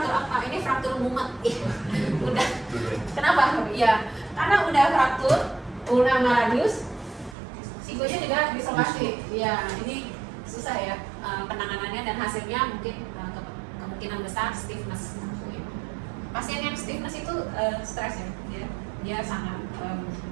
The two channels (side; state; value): left; drops out; at 7.4 s